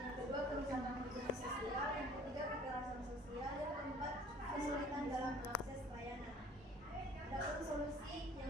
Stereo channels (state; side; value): normal; both; correlation 0.52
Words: Yang kedua kerusakan hubungan sosial, yang ketiga kekerasan sosial, yang keempat kesulitan dalam mengakses layanan. Adapun solusi